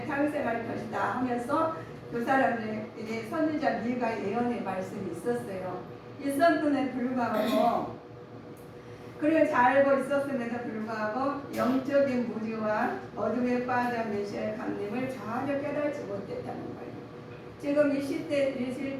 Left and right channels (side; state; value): both; identical; correlation 1.00